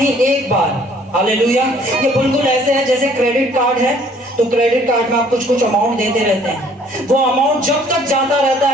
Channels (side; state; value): both; normal; correlation 0.58